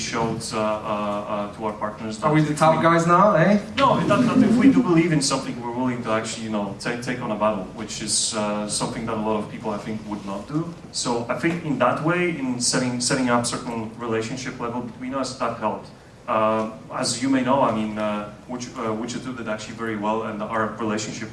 to our partners. Are we the top guys now, eh? No, that if we do believe in something, we're willing to actually, take on a battle, which is something that a lot of people, I think, would not do. So I think in that way, in setting up certain relationship level between us, that helped. As you may know, I mean, Witcher 2 did actually very well, and our relationship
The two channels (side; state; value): both; identical; correlation 1.00